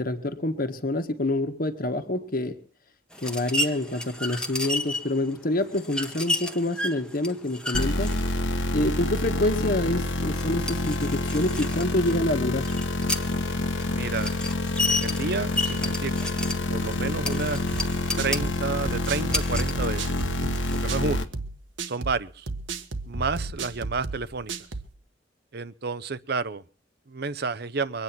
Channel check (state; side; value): normal; both; correlation 0.40